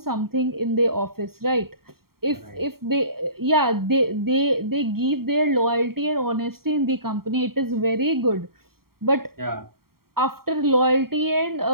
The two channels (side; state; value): left; late; 0.93 ms